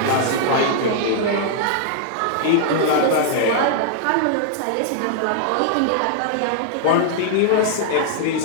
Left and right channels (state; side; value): different; both; correlation -0.01